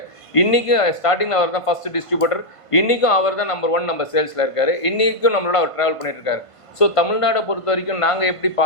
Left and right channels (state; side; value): late; right; 1.5 ms